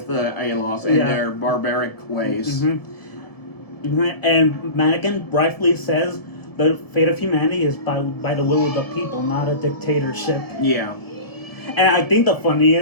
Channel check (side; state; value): right; late; 1.7 ms